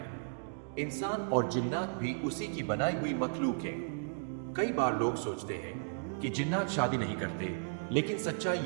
इंसान और जिन्नात भी उसी की बनाई हुई मखलूक है। कई बार लोग सोचते हैं कि जिन्नात शादी नहीं करते, लेकिन सच्चाई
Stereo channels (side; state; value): left; silent; digital silence